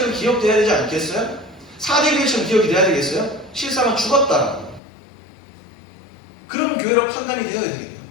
기억돼야 되지 않겠어요? 4대 교회처럼 기억이 돼야 되겠어요? 실상은 죽었다라고. 그런 교회로 판단이 되어야 되겠네요.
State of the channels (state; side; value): drops out; right; at 4.8 s